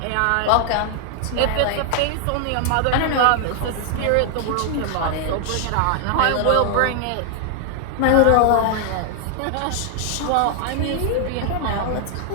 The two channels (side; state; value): both; different; correlation 0.00